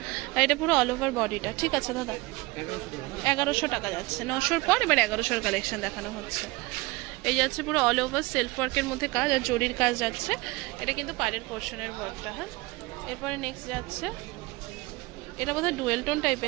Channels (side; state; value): left; quieter; 22.9 dB